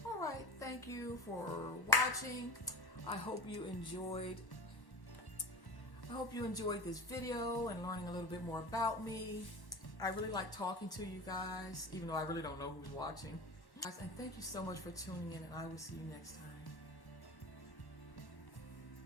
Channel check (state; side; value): late; right; 1.1 ms